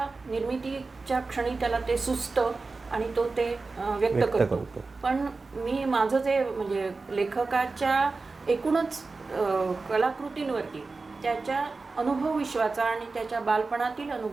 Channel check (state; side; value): quieter; left; 3.9 dB